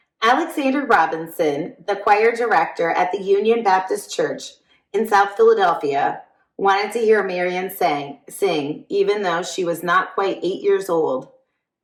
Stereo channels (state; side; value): identical; both; correlation 1.00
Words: Alexander Robinson, the choir director at the Union Baptist Church in South Philadelphia, wanted to hear Marian sing, even though she was not quite 8 years old